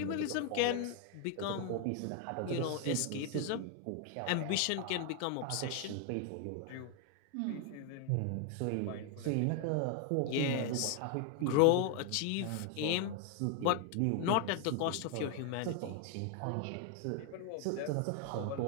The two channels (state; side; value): different; both; correlation 0.01